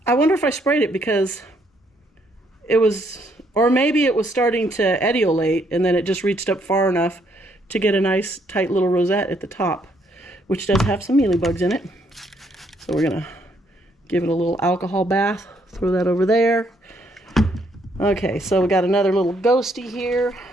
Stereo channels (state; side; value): normal; both; correlation 0.70